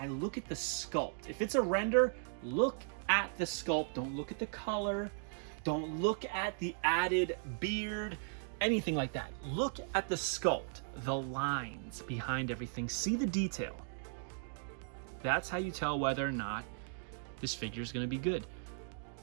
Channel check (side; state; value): left; silent; digital silence